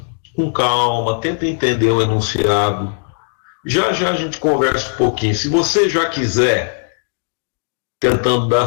com calma, tenta entender o enunciado. Já já a gente conversa um pouquinho. Se você já quiser, tentando dar a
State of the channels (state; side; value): silent; right; digital silence